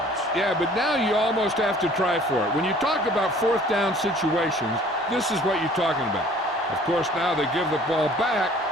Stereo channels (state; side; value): normal; both; correlation 0.52